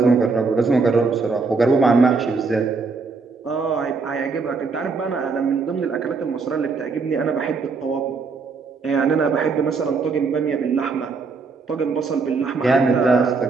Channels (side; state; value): left; quieter; 4.5 dB